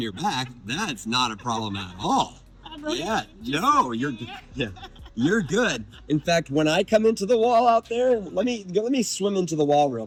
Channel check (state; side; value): identical; both; correlation 1.00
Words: back. That's not a problem at all. Yeah, no, you're good. In fact, when I come into the wall out there, let me swim into the wall real